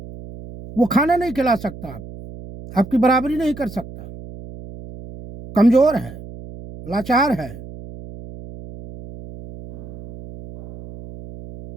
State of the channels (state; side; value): noise; right; hum, 15 dB below the sound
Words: वो खाना नहीं खिला सकता आपको, आपकी बराबरी नहीं कर सकता, कमजोर है, लाचार है,